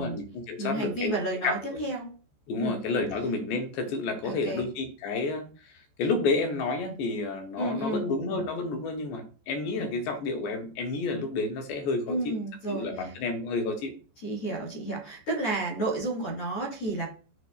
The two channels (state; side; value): late; right; 14 ms